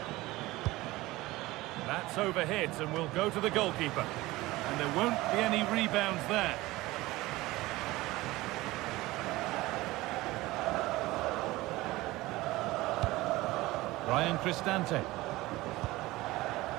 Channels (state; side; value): quieter; left; 19.1 dB